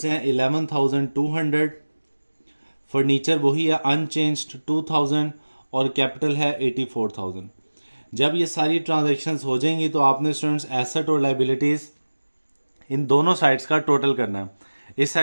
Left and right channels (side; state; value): both; inverted; correlation -1.00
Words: हैं 11,200, फर्नीचर वही है अनचेंज्ड 2000 और कैपिटल है 84,000। जब ये सारी ट्रांजैक्शंस हो जाएंगी तो आपने स्टूडेंट्स एसेट और लाइबिलिटीज़ इन दोनों साइड्स का टोटल करना है। इस